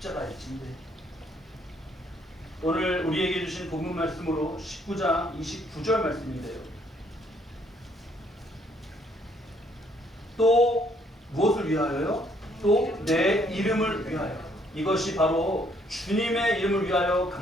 오늘 우리에게 주신 본문 말씀으로 19장 29절 말씀인데요. 또 무엇을 위하여요? 또 내 이름을 위하여. 이것이 바로 주님의 이름을 위하여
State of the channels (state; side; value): normal; both; correlation 0.67